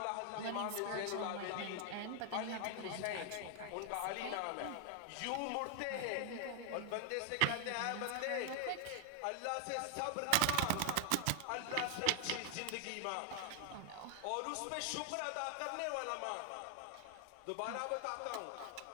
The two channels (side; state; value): both; different; correlation 0.00